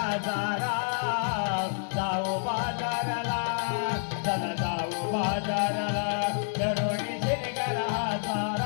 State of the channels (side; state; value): right; silent; digital silence